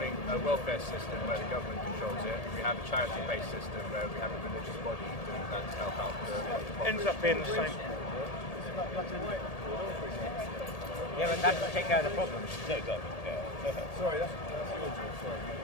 a welfare system where the government controls it, we have a charity-based system where we have a religious body doing that to help out the population? Ends up being the same. Yeah, but that doesn't take care of the problem. No, it doesn't. Yeah. Sorry, that's your job. Sorry.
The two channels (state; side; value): late; right; 1.8 ms